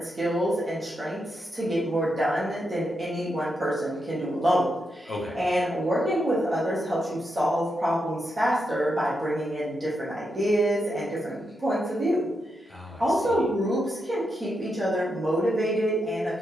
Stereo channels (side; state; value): both; normal; correlation 0.84